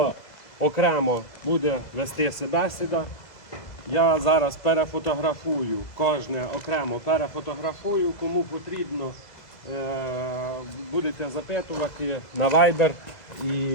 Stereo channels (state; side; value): late; right; 2.0 ms